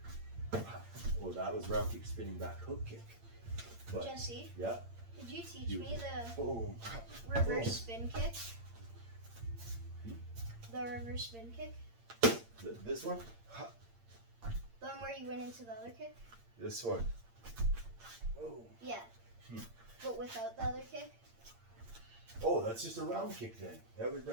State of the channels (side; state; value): left; late; 8.7 ms